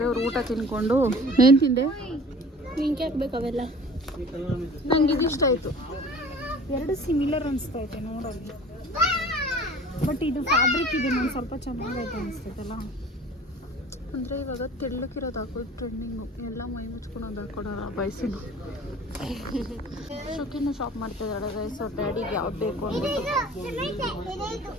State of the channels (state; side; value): normal; both; correlation 0.44